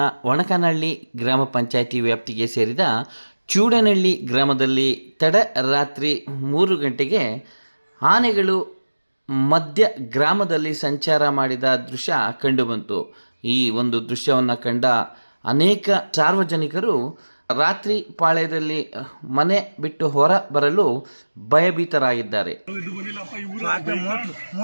ಒಣಕನಹಳ್ಳಿ ಗ್ರಾಮ ಪಂಚಾಯಿತಿ ವ್ಯಾಪ್ತಿಗೆ ಸೇರಿದ ಚೂಡನಹಳ್ಳಿ ಗ್ರಾಮದಲ್ಲಿ ತಡರಾತ್ರಿ 3 ಗಂಟೆಗೆ ಆನೆಗಳು ಮಧ್ಯ ಗ್ರಾಮದಲ್ಲಿ ಸಂಚಾರ ಮಾಡಿದ ದೃಶ್ಯ ಕಂಡುಬಂತು. ಈ ಒಂದು ದೃಶ್ಯವನ್ನು ಕಂಡ ಅನೇಕ ಸಾರ್ವಜನಿಕರು ರಾತ್ರಿ ಪಾಳ್ಯದಲ್ಲಿ ಮನೆ ಬಿಟ್ಟು ಹೊರ ಬರಲು ಭಯಭೀತರಾಗಿದ್ದಾರೆ.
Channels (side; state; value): both; inverted; correlation -1.00